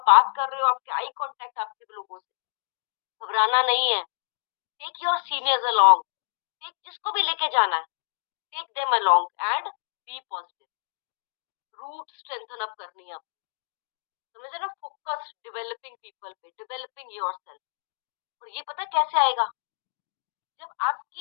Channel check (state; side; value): silent; right; 60 dB below the other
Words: बात कर रहे हो, आपके आई कांटेक्ट आपके लोगों से, घबराना नहीं है। Take your seniors along, take जिसको भी लेके जाना है, take them along and be positive. Root strengthen up करनी है आपको, समझे ना? फोकस डेवलपिंग पीपल पे, डेवलपिंग योरसेल्फ। और ये पता कैसे आएगा? जब